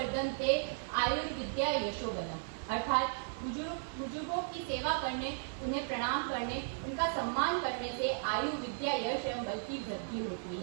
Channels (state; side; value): silent; left; digital silence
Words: आयुर्विद्या यशोबलम्। अर्थात बुजुर्गों की सेवा करने, उन्हें प्रणाम करने, उनका सम्मान करने से आयु विद्या यश एवं बल की वृद्धि होती